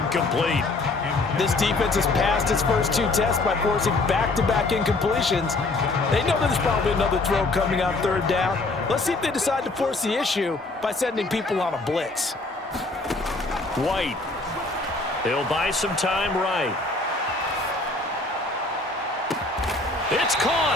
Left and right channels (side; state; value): right; quieter; 3.2 dB